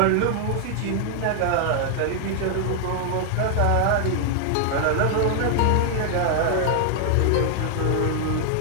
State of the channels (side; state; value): both; different; correlation 0.00